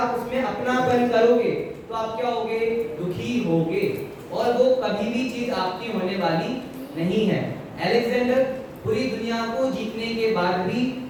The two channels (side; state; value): both; identical; correlation 1.00